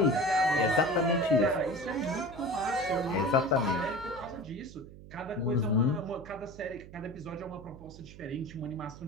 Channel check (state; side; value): noise; right; hum, 17 dB below the sound